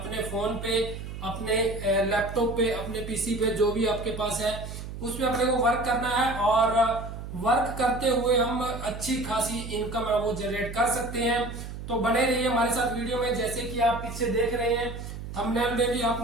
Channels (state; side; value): noise; right; hum, 9 dB below the sound